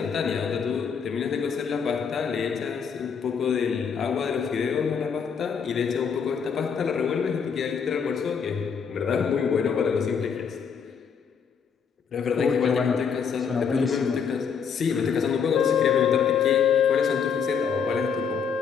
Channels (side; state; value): right; quieter; 6.6 dB